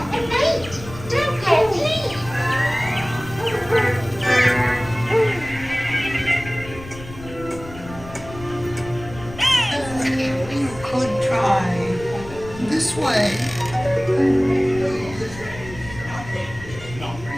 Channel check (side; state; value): left; noise; rumble, 15 dB below the sound